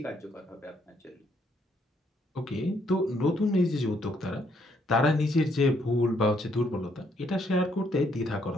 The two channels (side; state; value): both; normal; correlation 0.71